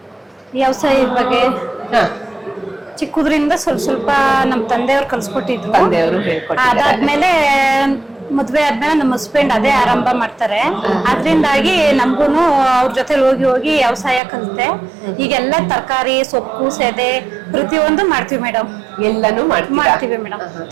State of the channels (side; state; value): left; drops out; at 14.2 s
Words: ವ್ಯವಸಾಯದ ಬಗ್ಗೆ ಚಿಕ್ಕದ್ರಿಂದ ಸ್ವಲ್ಪ ನಮ್ ತಂದೆಯವ್ರು ಕಲ್ಸ್ಕೊಟ್ಟಿದ್ರು. ತಂದೆಯವರು ಹೇಳ್ಕೊಟ್ಟಿದ್ದಾರೆ. ಅದಾದ್ಮೇಲೆ ಮದ್ವೆ ಆದ್ಮೇಲೆ ನಮ್ಮ ಹಸ್ಬೆಂಡ್ ಅದೇ ಆರಂಭ ಮಾಡ್ತಾರೆ. ಅದ್ರಿಂದಾಗಿ ನಮ್ಗೂನು ಅವ್ರ ಜೊತೆ ಹೋಗಿ ವ್ಯವಸಾಯ ಕಲಿತೆ. ಈಗೆಲ್ಲ ತರಕಾರಿ, ಸೊಪ್ಪು, ಸೆದೆ ಪ್ರತಿಯೊಂದು ಮಾಡ್ತೀವಿ ಮೇಡಮ್. ಎಲ್ಲಾನು ಮಾಡ್ತೀವಿ ಮೇಡಮ್.